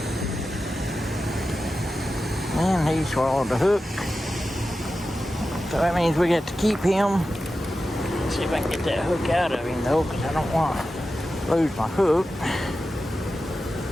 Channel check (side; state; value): both; normal; correlation 0.92